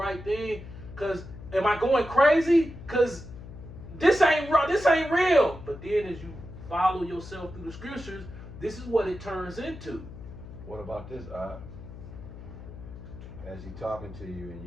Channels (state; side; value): noise; left; hum, 14 dB below the sound